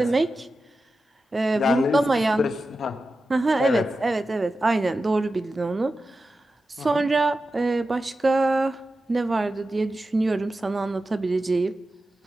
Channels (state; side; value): normal; both; correlation 0.92